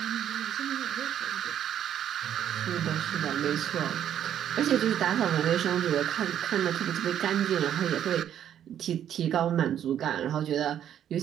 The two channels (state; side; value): quieter; left; 10.1 dB